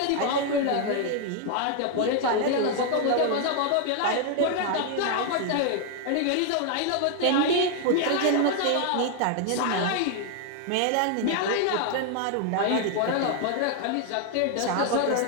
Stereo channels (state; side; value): different; both; correlation 0.00